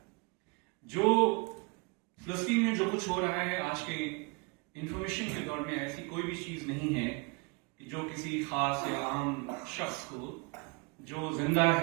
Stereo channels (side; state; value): left; quieter; 31.3 dB